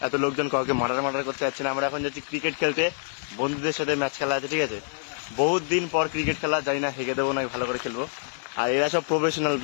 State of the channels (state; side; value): silent; right; digital silence